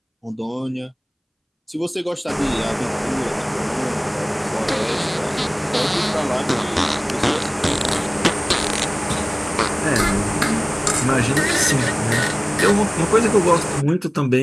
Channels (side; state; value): both; identical; correlation 1.00